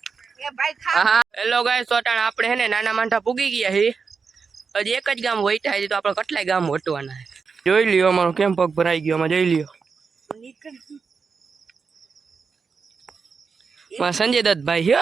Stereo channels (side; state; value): left; quieter; 5.3 dB